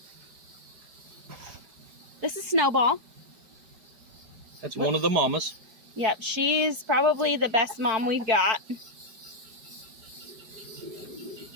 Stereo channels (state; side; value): late; left; 4.5 ms